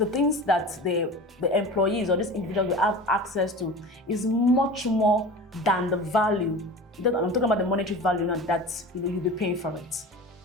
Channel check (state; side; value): normal; both; correlation 0.34